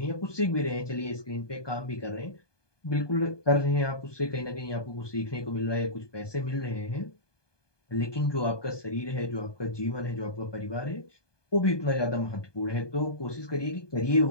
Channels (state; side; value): late; right; 1.2 ms